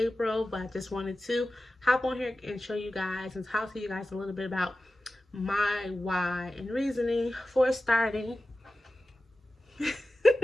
but I just wanted to hop on here and show you guys and talk to you guys a little bit about my why and reasoning for starting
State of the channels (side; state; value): both; normal; correlation 0.94